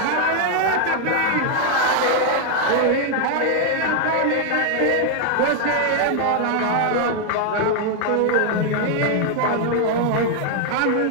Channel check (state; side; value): different; both; correlation 0.00